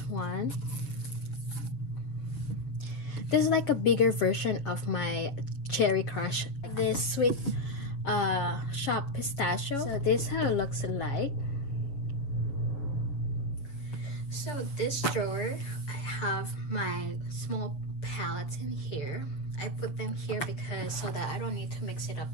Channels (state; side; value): late; right; 7.2 ms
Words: one. This is like a bigger version of my Cherry Crush. This Sweet Shop Pistachio. So this is how it looks like. So this drawer, I have my small palettes in here. I put them here because so that I don't need to mix it up